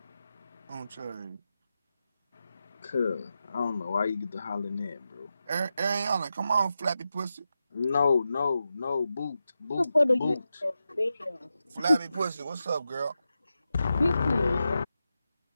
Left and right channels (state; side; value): inverted; both; correlation -0.90